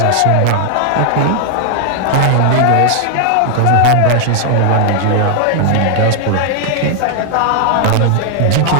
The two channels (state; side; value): different; both; correlation 0.00